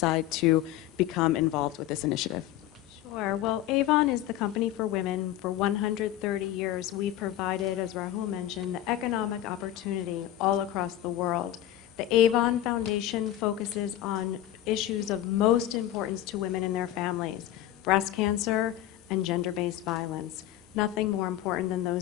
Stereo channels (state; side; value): quieter; right; 13.1 dB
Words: to become involved with this initiative? Sure. Well, Avon is the company for women. For 130 years, we've provided, as Rahul mentioned, the economic opportunity all across the world. The Avon Foundation focuses on issues of most importance to women and their families: breast cancer and gender-based violence. Nothing more important than